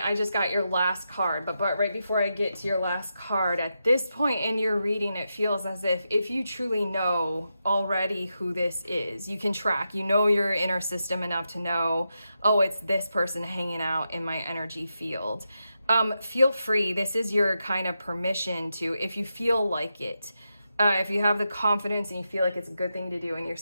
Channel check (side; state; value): both; inverted; correlation -0.87